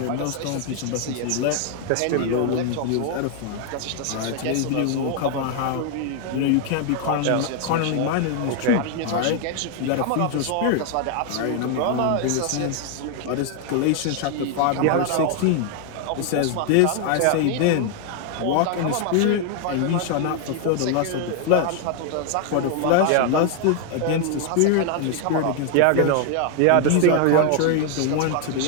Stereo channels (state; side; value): different; both; correlation 0.00